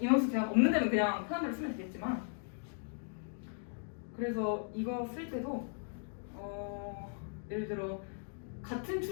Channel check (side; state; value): right; silent; 53 dB below the other